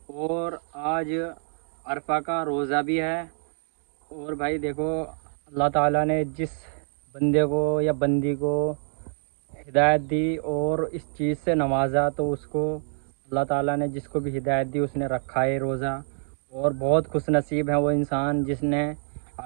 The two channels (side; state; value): left; silent; digital silence